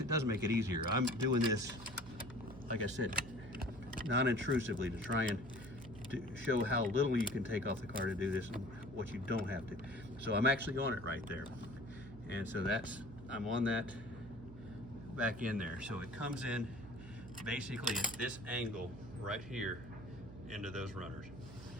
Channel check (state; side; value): noise; right; hum, 15 dB below the sound